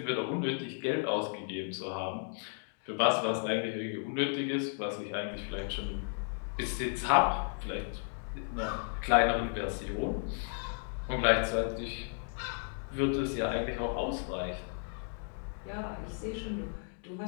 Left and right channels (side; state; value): right; silent; 55 dB below the other